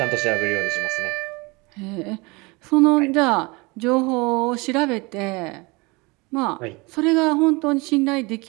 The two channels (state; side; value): quieter; left; 26.0 dB